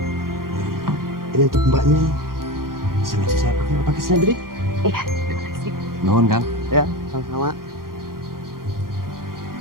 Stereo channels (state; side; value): late; left; 0.92 ms